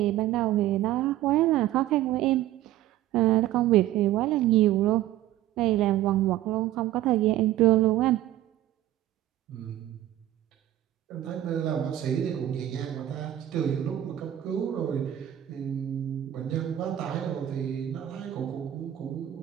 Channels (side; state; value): left; quieter; 13.4 dB